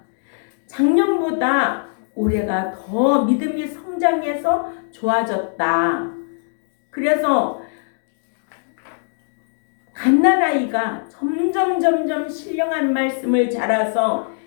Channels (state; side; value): silent; right; digital silence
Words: 작년보다 올해가 더 믿음이 성장해서 좋아졌다. 그래서 갓난아이가 점점 신령한 말씀을 자라서